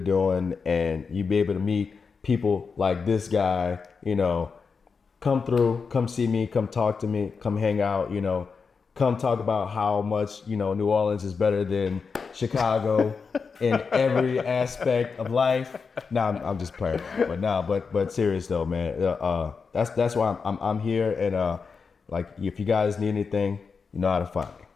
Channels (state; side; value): quieter; right; 5.3 dB